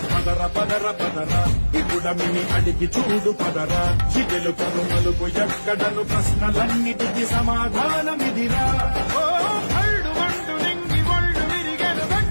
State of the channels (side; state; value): both; inverted; correlation -1.00